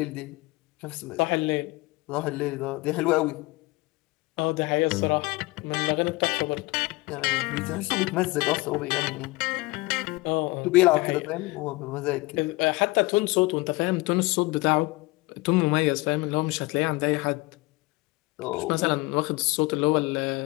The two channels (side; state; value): right; quieter; 22.8 dB